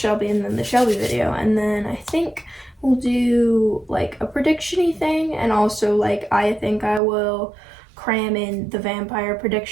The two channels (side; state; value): left; drops out; at 7.0 s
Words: and then the Shelby video, and then I think we'll do, like, a prediction-y thing, and also, like, I think I will cram in the vampire